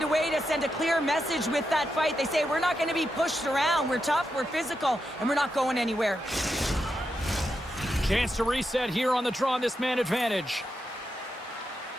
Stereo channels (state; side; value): normal; both; correlation 0.86